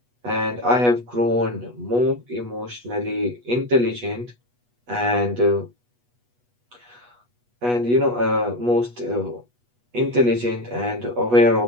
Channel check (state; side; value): late; left; 8.2 ms